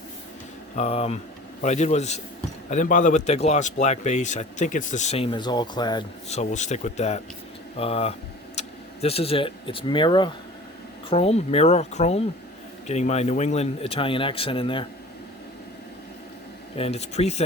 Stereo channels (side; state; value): both; normal; correlation 0.42